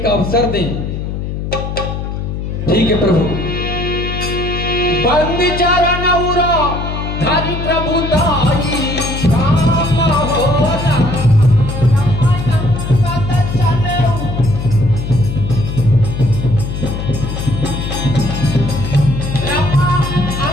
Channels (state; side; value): noise; left; hum, 5 dB below the sound